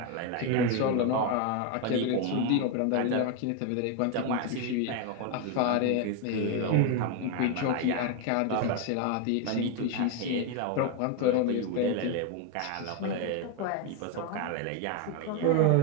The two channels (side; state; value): both; different; correlation 0.01